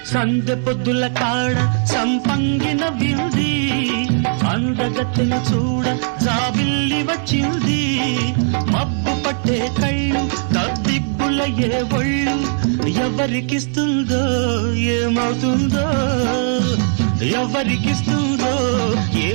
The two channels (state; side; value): silent; left; 61 dB below the other